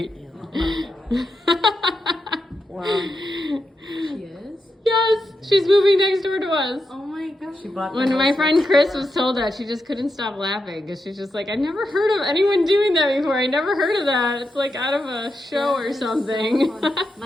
Well, She is? Yes, she's moving next door to us. Oh my gosh. She bought the When house my friend next Chris door. was told that, she just couldn't stop laughing because she's just like, I never heard of anyone doing that before. I never heard of that. It's like out of a show or something.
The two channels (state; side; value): normal; both; correlation 0.86